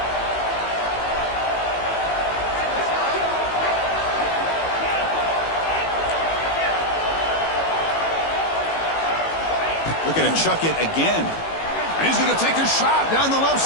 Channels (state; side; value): late; right; 18 ms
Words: Looking to chuck it again. And he's going to take a shot down the left